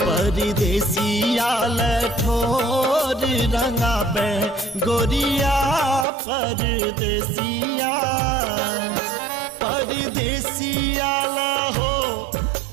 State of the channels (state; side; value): drops out; left; at 6.1 s